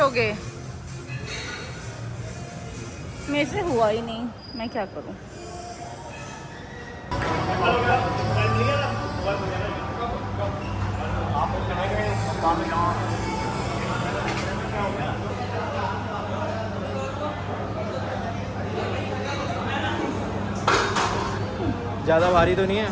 मेरे से हुआ ही नहीं, मैं क्या करूं? ज़्यादा भारी तो नहीं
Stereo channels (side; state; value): both; identical; correlation 1.00